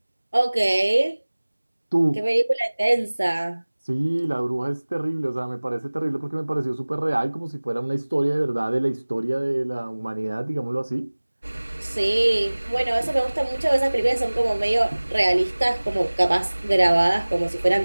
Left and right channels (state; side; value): inverted; both; correlation -1.00